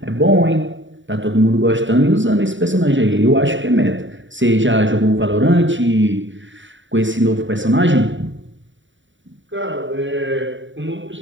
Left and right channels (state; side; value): late; left; 0.55 ms